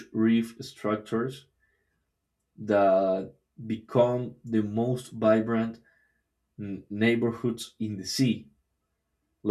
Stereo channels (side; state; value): both; identical; correlation 1.00